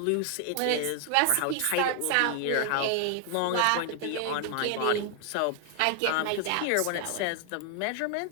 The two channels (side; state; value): both; different; correlation 0.00